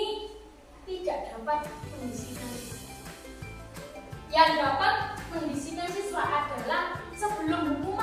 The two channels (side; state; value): both; identical; correlation 1.00